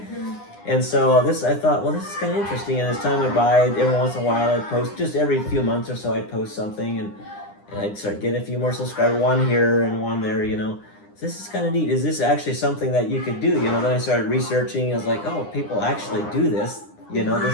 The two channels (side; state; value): right; late; 9.8 ms